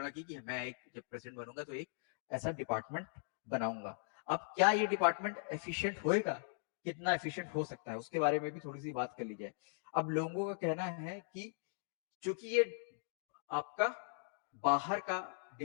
की कि मैं एक जब प्रेसिडेंट बनूंगा तो एक ऐसा डिपार्टमेंट बनाऊंगा। अब क्या ये डिपार्टमेंट एफिशिएंट होएगा, कितना एफिशिएंट हो सकता है, उसके बारे में भी थोड़ी सी बात कर ली जाए। अब लोगों का कहना है कि चूंकि ये आपका बाहर का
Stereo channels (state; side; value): silent; right; digital silence